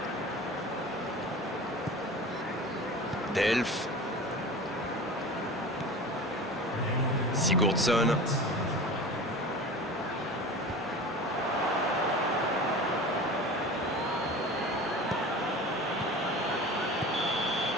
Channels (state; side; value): normal; both; correlation 0.35